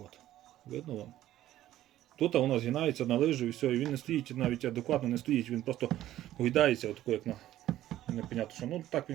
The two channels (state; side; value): quieter; left; 13.5 dB